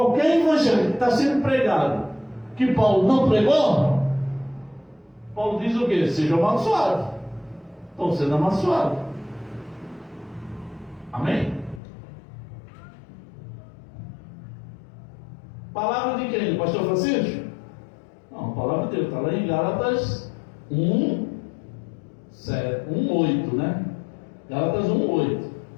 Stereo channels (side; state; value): right; drops out; at 11.8 s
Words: evangelho que está sendo pregado, que Paulo não pregou, Paulo diz o quê? Seja amaldiçoado. Estão sendo amaldiçoados. Amém? Palavra de quem? Do pastor Francisco? Não, a palavra de Deus está lá em Gálatas 1:8, né? Gálatas 1:8.